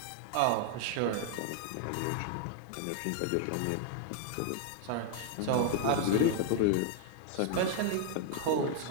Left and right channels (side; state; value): both; different; correlation 0.00